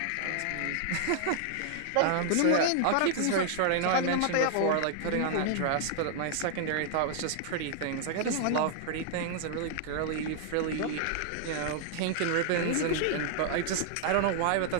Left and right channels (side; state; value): both; different; correlation 0.00